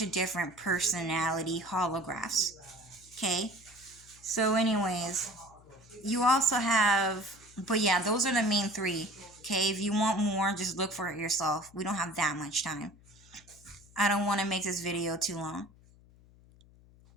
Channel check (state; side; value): noise; left; hum, 26 dB below the sound